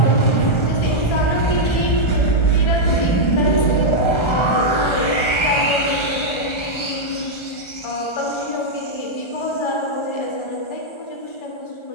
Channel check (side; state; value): right; late; 1.3 ms